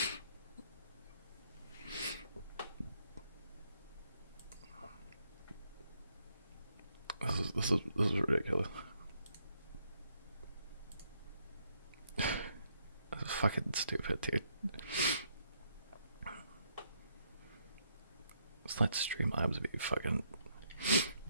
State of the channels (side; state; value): both; inverted; correlation -0.74